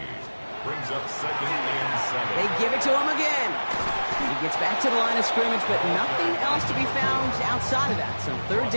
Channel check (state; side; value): inverted; both; correlation -1.00